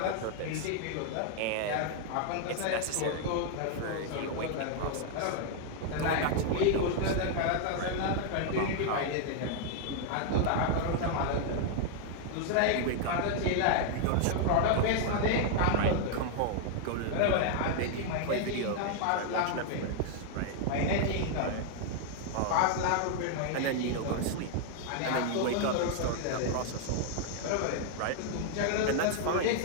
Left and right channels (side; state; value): both; different; correlation 0.00